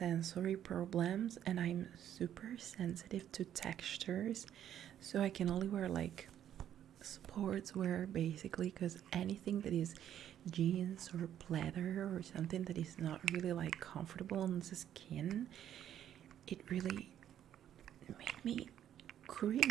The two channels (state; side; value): quieter; left; 10.6 dB